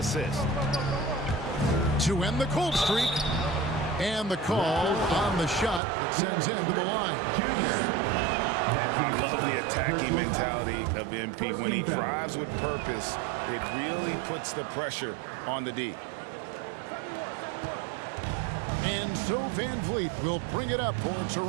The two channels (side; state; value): left; drops out; at 5.8 s